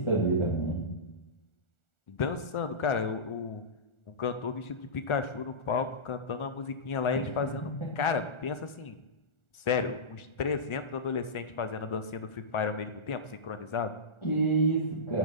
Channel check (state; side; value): late; right; 1.4 ms